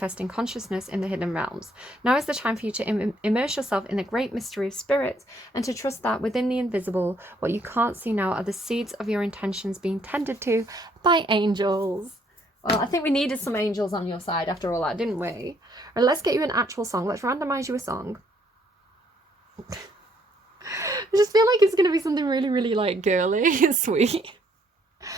consciousness in the hidden realms. Now is the time for you to immerse yourself in the great mystery of spirit and to trust that within the invisible, what you can't see now are the seeds of your intentions being tended to by angels. Well, I think we needed some angels on your side after all that, didn't we? Right, let's get you an actual song. Let's randomize you a song. I just feel like it's going to be something really, really like girly and sweet.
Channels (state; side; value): normal; both; correlation 0.68